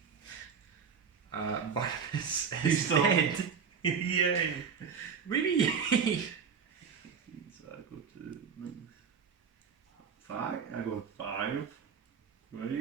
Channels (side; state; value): left; quieter; 6.4 dB